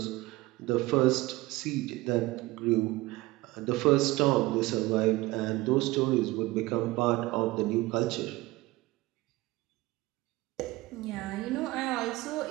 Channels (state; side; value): quieter; left; 19.9 dB